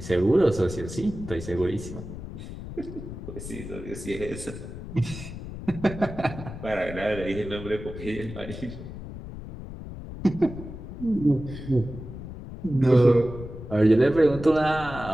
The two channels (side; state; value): left; noise; rumble, 11 dB below the sound